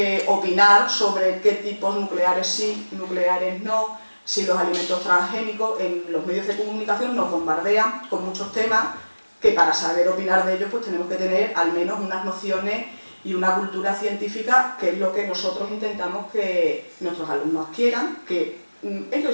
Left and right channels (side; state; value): both; inverted; correlation -1.00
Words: opinar sobre qué tipos nucleares sí, nucleares no, si los alimentos transgénicos. En los medios de comunicación nos bombardean con muchos temas que para saber opinar de ellos pues tenemos que tener al menos unas nociones y una cultura científica, que es lo que nosotros intentamos que nuestros alumnos adquieran, que ellos